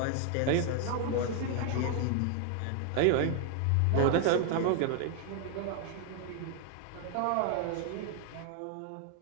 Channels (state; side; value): different; both; correlation 0.00